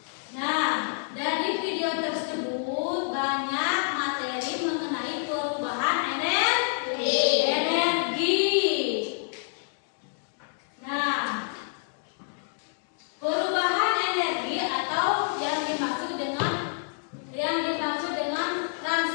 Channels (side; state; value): right; silent; digital silence